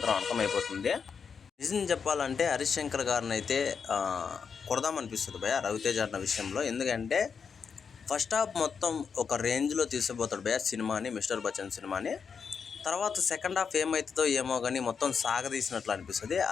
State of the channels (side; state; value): right; quieter; 6.1 dB